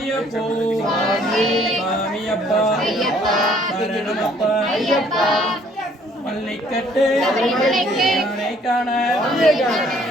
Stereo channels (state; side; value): normal; both; correlation 0.61